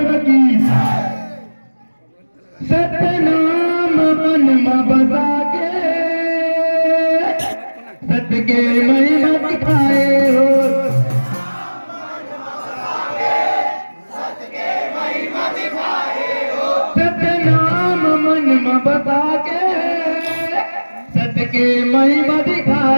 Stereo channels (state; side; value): inverted; both; correlation -1.00